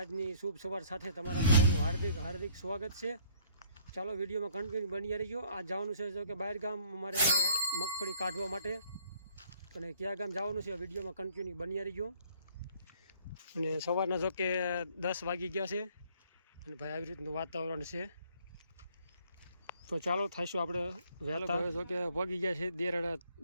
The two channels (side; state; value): both; inverted; correlation -0.61